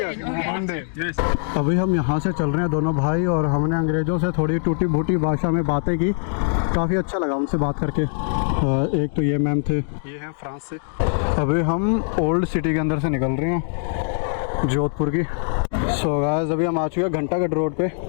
Okay. One day. Yes. अभी हम यहाँ से चल रहे हैं दोनों भाई और हमने अंग्रेज़ों से थोड़ी टूटी फूटी भाषा में बातें की। काफ़ी अच्छा लगा उनसे बात करके। एक तो ये मैम थे, ये हैं फ्रांस से। अभी हम ओल्ड सिटी के अंदर से निकल रहे हैं, जोधपुर की। सो गाइस अभी हम आ चुके हैं घंटाघर रोड पे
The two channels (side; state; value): right; silent; digital silence